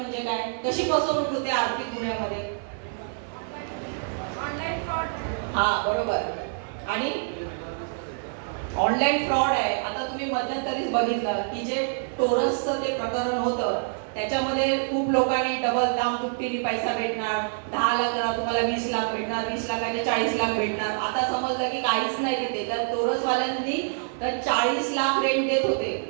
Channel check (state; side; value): silent; left; 56 dB below the other